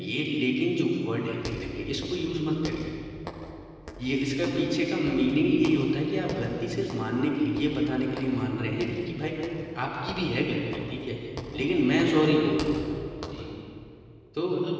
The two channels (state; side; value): identical; both; correlation 1.00